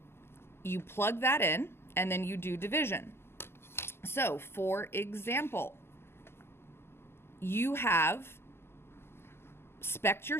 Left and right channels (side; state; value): right; late; 0.12 ms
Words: you plug that in and then you do division. So for example, you have spec'd your